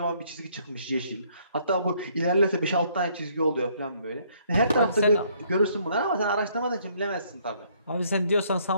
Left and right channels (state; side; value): inverted; both; correlation -0.65